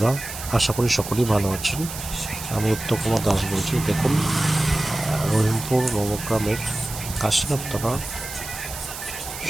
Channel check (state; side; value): noise; right; hiss, 10 dB below the sound